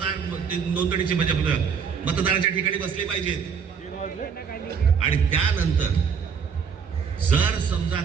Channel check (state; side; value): quieter; left; 6.5 dB